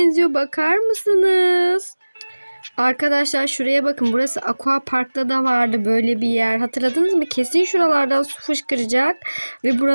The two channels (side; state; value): both; inverted; correlation -1.00